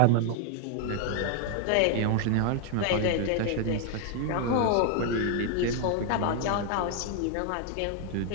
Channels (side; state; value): both; different; correlation 0.00